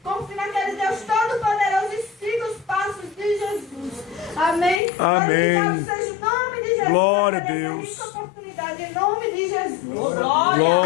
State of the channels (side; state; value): right; drops out; at 4.8 s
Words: confie naquele Deus Todo-Poderoso e siga os passos de Jesus. Amém? Amém. Glorificado seja o nome de Jesus. Glória a por essa Deus. rica oportunidade, em nome de Jesus.